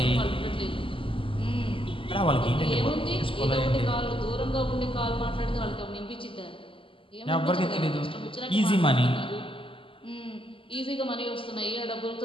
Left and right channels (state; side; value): late; right; 0.25 ms